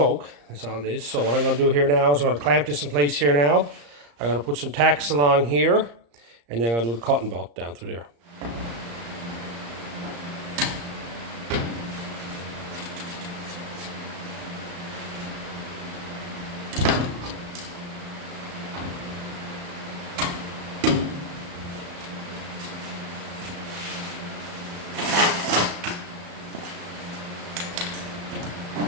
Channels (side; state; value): left; late; 35 ms